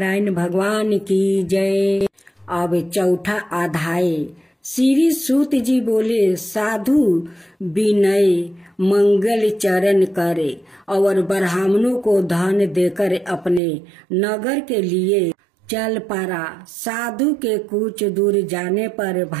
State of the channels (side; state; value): left; drops out; at 13.6 s